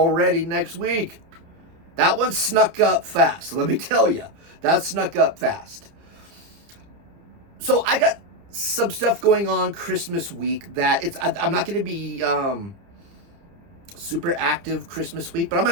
next week. That one snuck up fast. Let me tell you, that snuck up fast. So I got some stuff going on Christmas week that I'm not going to be super active Christmas week, but I'm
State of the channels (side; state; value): left; late; 30 ms